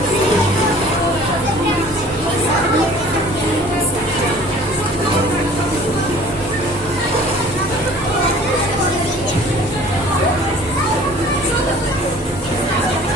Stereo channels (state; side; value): normal; both; correlation 0.49